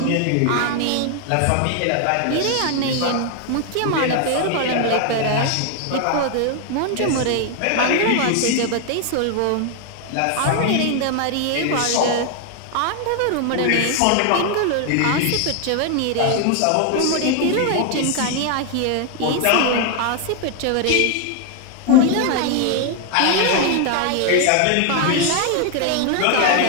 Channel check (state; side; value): different; both; correlation 0.00